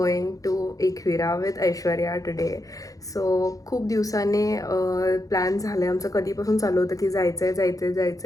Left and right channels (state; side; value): late; right; 0.17 ms